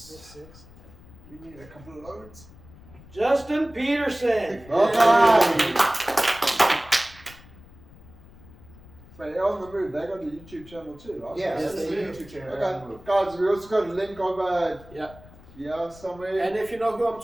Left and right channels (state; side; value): noise; left; rumble, 21 dB below the sound